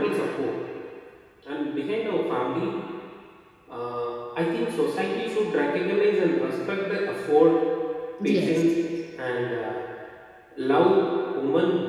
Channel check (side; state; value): both; identical; correlation 1.00